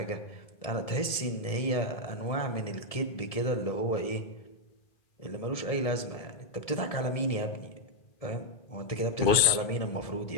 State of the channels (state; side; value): late; right; 1.7 ms